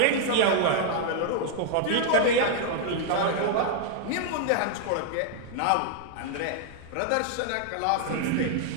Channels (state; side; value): different; both; correlation 0.00